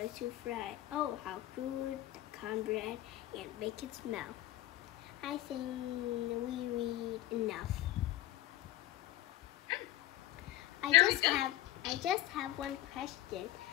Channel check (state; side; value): quieter; right; 14.9 dB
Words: Oh, how good the cornbread and bacon smell. I think we read enough. I just have one question.